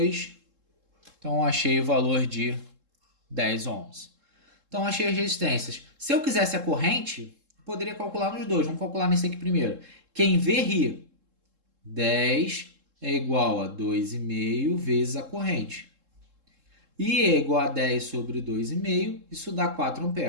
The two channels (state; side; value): late; left; 3.7 ms